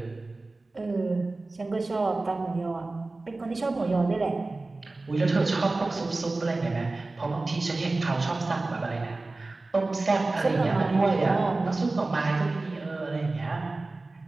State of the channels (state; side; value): quieter; left; 3.3 dB